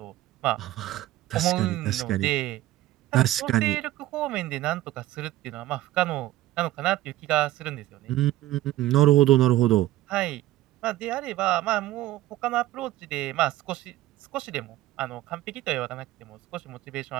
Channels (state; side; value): quieter; left; 15.4 dB